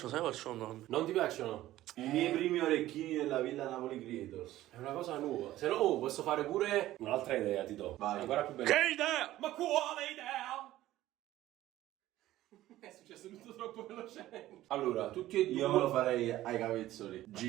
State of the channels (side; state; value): left; quieter; 14.9 dB